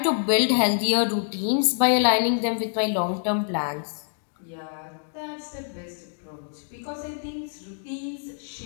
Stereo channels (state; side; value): silent; right; digital silence